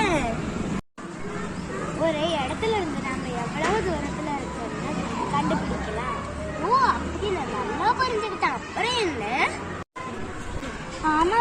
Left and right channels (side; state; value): both; identical; correlation 1.00